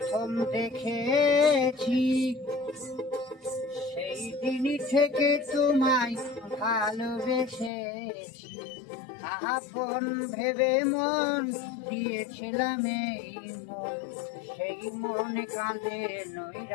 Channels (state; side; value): drops out; right; at 7.7 s